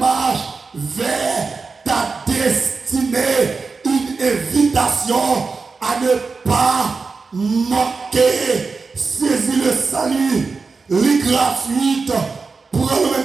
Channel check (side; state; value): left; quieter; 4.5 dB